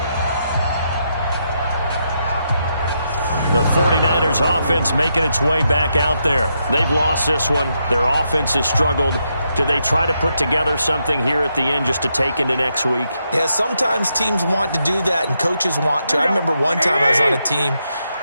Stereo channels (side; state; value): both; inverted; correlation -0.81